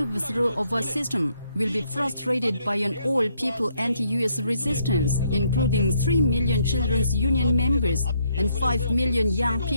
of our system will be frustrated by an all-people anti-U.S. resistance, including 3 million children's union members and 5 million young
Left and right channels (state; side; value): inverted; both; correlation -0.72